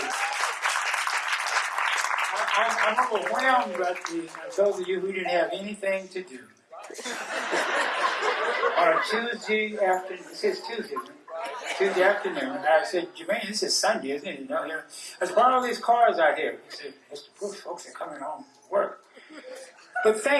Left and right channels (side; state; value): both; identical; correlation 1.00